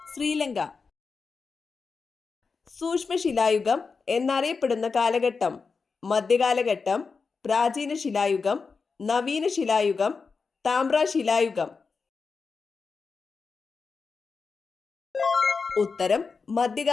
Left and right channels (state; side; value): quieter; right; 4.8 dB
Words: ശ്രീലങ്ക. സൂക്ഷ്മശിലായുഗം എന്നറിയപ്പെടുന്ന കാലഘട്ടം: മധ്യകാലഘട്ടം, പ്രാചീന ശിലായുഗം, നവീന ശിലായുഗം, താമ്രശിലായുഗം. ഉത്തരം